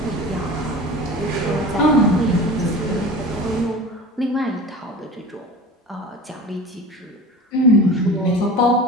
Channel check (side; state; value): both; normal; correlation 0.35